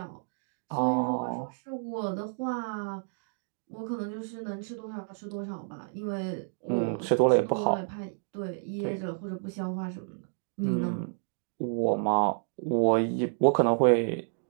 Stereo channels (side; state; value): left; silent; digital silence